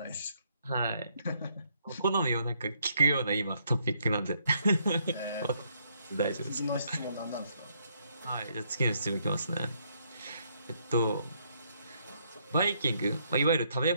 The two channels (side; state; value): both; inverted; correlation -0.72